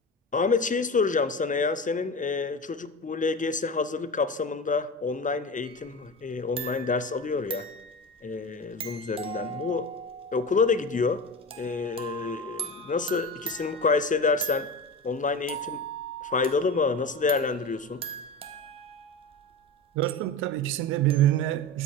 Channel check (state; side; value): normal; both; correlation 0.28